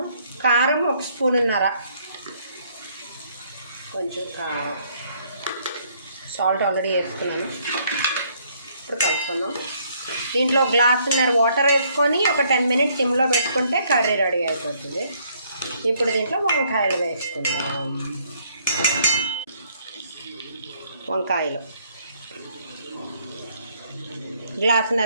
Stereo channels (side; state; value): both; inverted; correlation -0.66